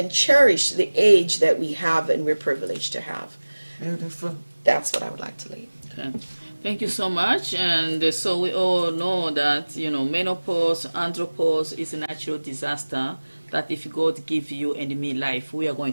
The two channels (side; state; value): both; inverted; correlation -1.00